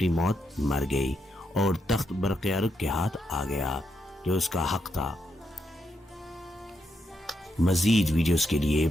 موت مر گئی اور تخت برقیارق کے ہاتھ آ گیا جو اس کا حق تھا۔ مزید ویڈیوز کے لیے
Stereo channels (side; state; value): both; normal; correlation 0.81